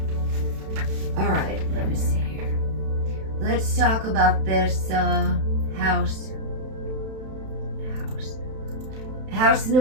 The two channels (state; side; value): late; left; 31 ms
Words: All right, let me see here. Let's talk about this house. House